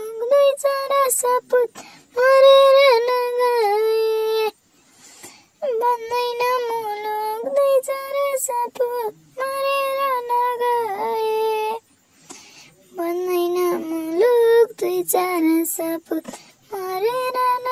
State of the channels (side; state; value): both; identical; correlation 1.00